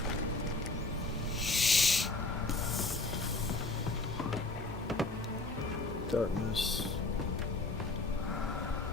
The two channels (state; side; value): quieter; right; 3.2 dB